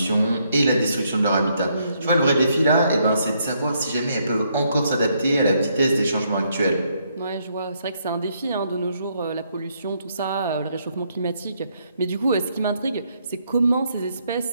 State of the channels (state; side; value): inverted; both; correlation -0.74